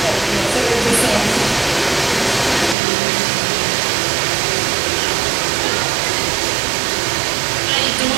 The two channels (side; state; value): left; drops out; at 2.8 s